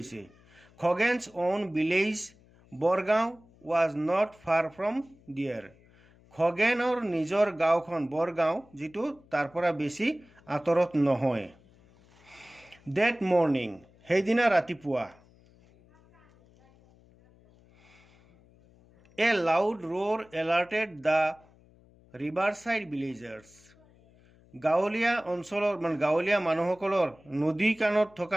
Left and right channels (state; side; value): noise; left; hum, 28 dB below the sound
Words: Khagen's own village Borgaon was not far from there, খগেনৰ নিজৰ গাঁওখন বৰগাঁও, যিটো তাৰ পৰা বেছি আঁতৰত নহয়। ডেট মৰ্ণিং, সেইদিনা ৰাতিপুৱা। A loud roar alerted the riverside villagers, গাঁৱলীয়া মানুহসকলৰ, নদী কাণত